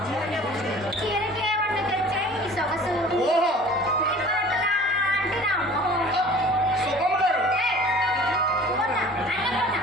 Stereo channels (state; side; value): normal; both; correlation 0.46